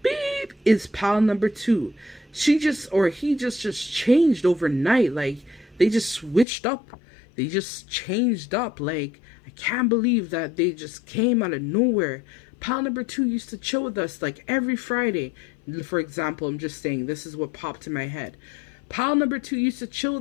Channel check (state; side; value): drops out; right; at 6.5 s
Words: beep is pile number 2? She just, or he just changed overnight. Like they just switched up. They just changed up. Like, I can't believe that they just came out of nowhere. Pile number 2 used to chill with us like every Friday. For example, I'm just saying, this is what popped in my head. Pile number 2 used to chill